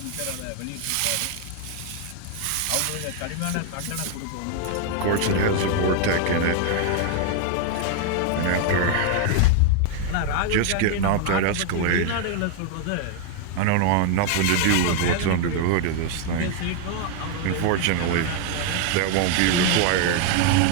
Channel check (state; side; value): different; both; correlation 0.00